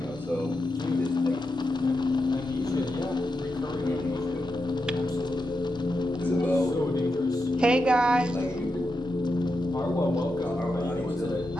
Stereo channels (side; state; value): both; normal; correlation 0.87